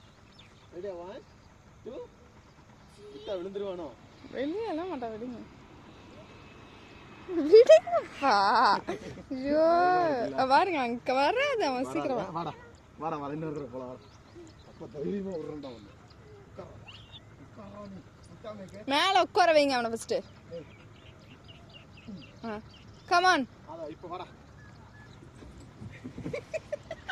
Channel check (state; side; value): identical; both; correlation 1.00